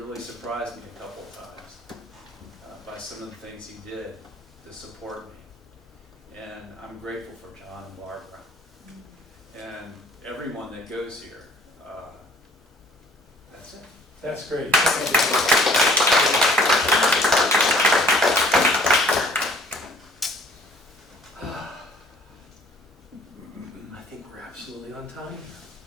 surprised me a couple of times by some of the things he did to support me. And I'm grateful for John and Barbara and everyone that goes here. That's it. That's great. I think we're absolutely on time.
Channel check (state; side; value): normal; both; correlation 0.55